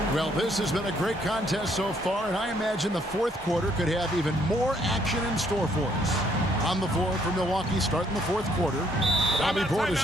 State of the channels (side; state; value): both; normal; correlation 0.68